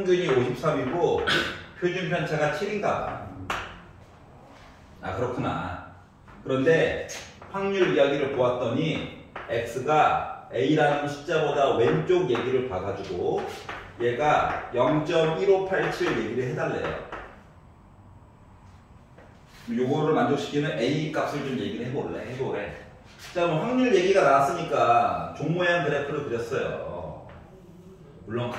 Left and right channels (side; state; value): both; identical; correlation 1.00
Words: 53이고 표준 편차가 7인가. 그렇구나. 그런데 확률 이야기를 보았더니 x가 a라는 숫자보다 왼쪽 얘기를 봐가지고 얘가 0.1587 얘기를 해달래요. 요거를 만족시키는 a 값을 좀 얘기를 해보래. 자, 그럼 확률 얘기가 나왔으니까 종 모양 그래프를 그렸어요. 물론